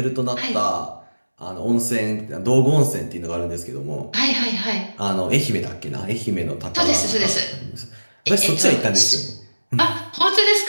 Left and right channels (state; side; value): inverted; both; correlation -1.00